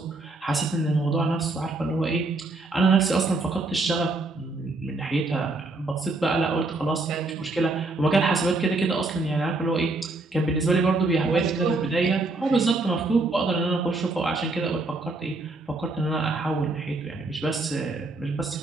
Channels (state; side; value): quieter; left; 3.2 dB